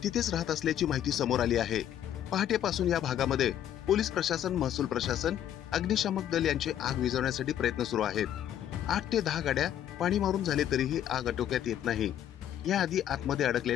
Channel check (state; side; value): quieter; right; 10.7 dB